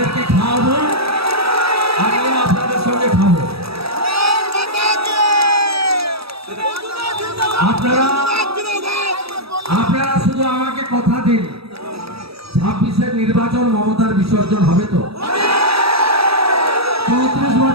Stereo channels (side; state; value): left; late; 0.77 ms